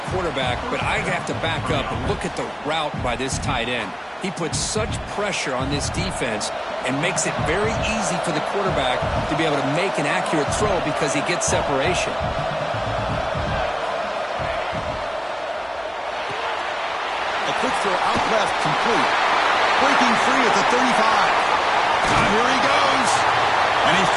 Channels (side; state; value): both; identical; correlation 1.00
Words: quarterback, but I have to back up and look at the route by this tight end. He puts such pressure on this defense and makes it very easy for the quarterback to be able to make an accurate throw because he gets separation. A quick throw out left, complete. Breaking free at the 35. Here he goes. And he